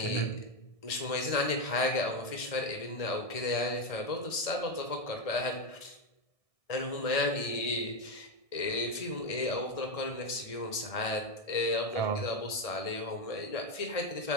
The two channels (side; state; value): right; late; 1.6 ms